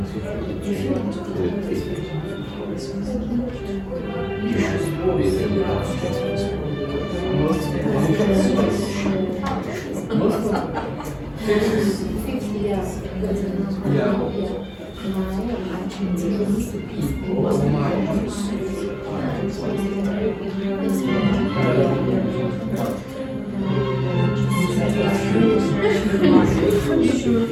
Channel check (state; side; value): identical; both; correlation 1.00